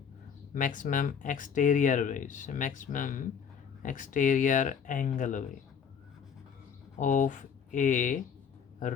मैक्सिमम एक्सटीरियर भाई, मैक्सिमम एक्सटीरियर एंगल भाई ऑफ ए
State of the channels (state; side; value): quieter; right; 7.1 dB